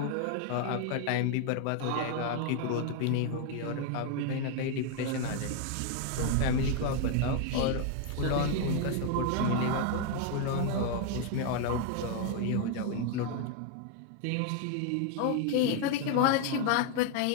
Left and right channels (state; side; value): different; both; correlation 0.00